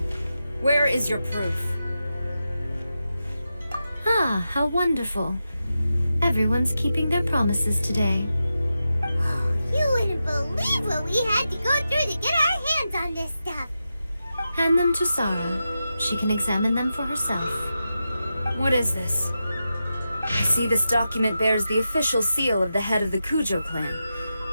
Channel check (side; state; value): both; inverted; correlation -0.90